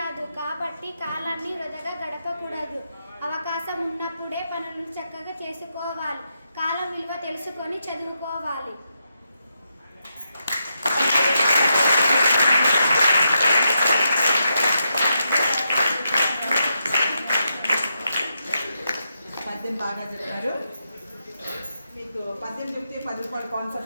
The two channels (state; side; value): inverted; both; correlation -0.84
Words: కాబట్టి కాలాన్ని వృధాగా గడపకూడదు. అవకాశం ఉన్నప్పుడే పనులను చక్కగా చేసుకోవాలి. కాలం విలువ తెలుసుకొని చదువుకోవాలి. పద్యం బాగా చెప్పారు. మీకు పద్యం చెప్తే 10 రూపాయల